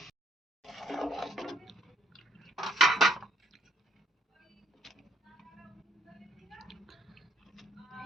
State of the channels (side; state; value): both; normal; correlation 0.67